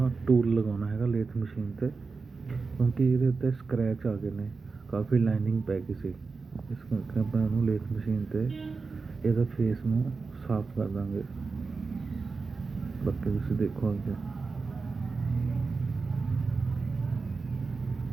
ਟੂਲ ਲਗਾਉਣਾ ਹੈਗਾ ਲੇਥ ਮਸ਼ੀਨ 'ਤੇ, ਕਿਉਂਕਿ ਇਹਦੇ ਉੱਤੇ ਸਕਰੈਚ ਆ ਗਏ ਨੇ, ਕਾਫੀ ਲਾਈਨਿੰਗ ਪੈ ਗਈ ਸੀ। ਇਸ ਕਰਕੇ ਆਪਾਂ ਇਹਨੂੰ ਲੇਥ ਮਸ਼ੀਨ 'ਤੇ ਇਹਦਾ ਫੇਸ ਨੂੰ ਸਾਫ਼ ਕਰ ਦਾਂਗੇ। ਬਾਕੀ ਤੁਸੀਂ ਦੇਖੋ ਅੱਗੇ।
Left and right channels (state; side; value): quieter; left; 4.4 dB